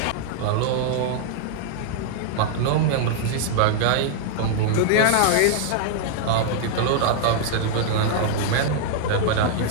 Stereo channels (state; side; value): different; both; correlation -0.01